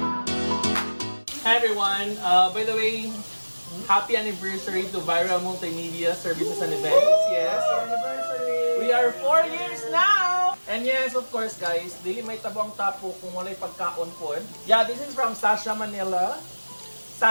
Hi everyone! By the way, happy anniversary to Viral Multimedia Services and Events. Yes, anniversary! We are 4 years now! And yes, of course guys, dili may tabang tapo kung walay pagkaon po. Yeah, this is from Sasha Manila.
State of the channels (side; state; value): both; inverted; correlation -1.00